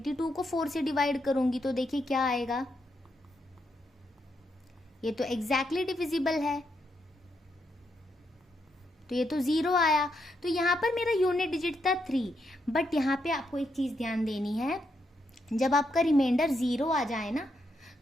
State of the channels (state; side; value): normal; both; correlation 0.80